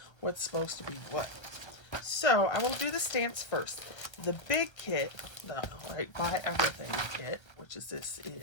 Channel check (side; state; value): right; late; 1.3 ms